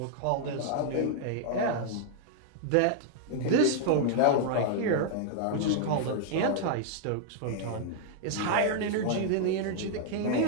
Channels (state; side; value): different; both; correlation -0.01